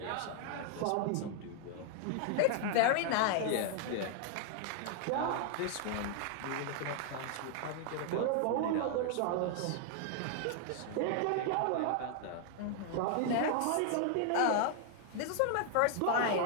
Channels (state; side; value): different; both; correlation 0.00